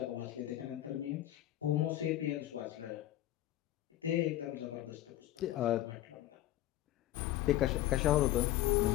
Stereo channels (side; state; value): right; quieter; 14.1 dB